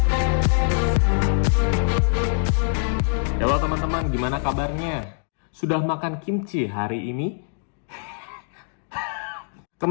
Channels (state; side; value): silent; right; digital silence